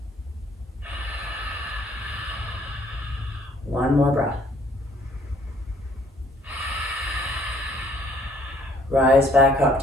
One more breath. Rise back up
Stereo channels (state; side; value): normal; both; correlation 0.61